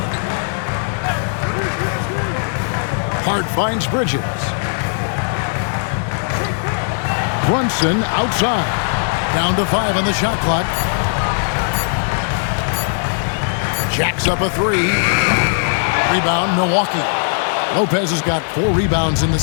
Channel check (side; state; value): right; silent; digital silence